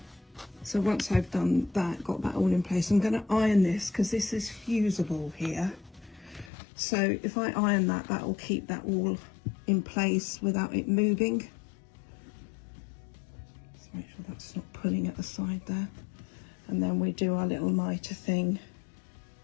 So once I've done that, got that all in place, I'm going to iron this because this is fusible here. So if I iron that, that will keep that all in place without it moving. Make sure that's not pulling at the side there, and then we do our little mitre thing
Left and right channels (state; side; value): drops out; right; at 6.5 s